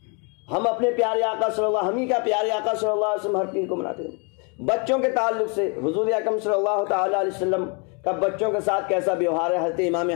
ہم اپنے پیارے آقا صلی اللہ، ہم ہی کا پیارے آقا صلی اللہ علیہ وسلم ہر پیر کو مناتے ہیں۔ بچوں کے تعلق سے حضور اکرم صلی اللہ تعالی علیہ وسلم کا بچوں کے ساتھ کیسا بیوہار ہے، حضرت امام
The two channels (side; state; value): right; quieter; 35.1 dB